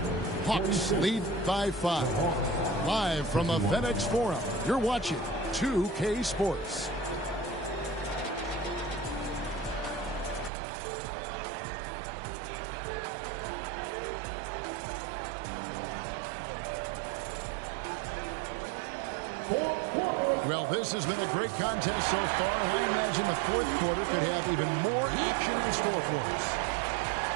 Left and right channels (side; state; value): left; drops out; at 10.5 s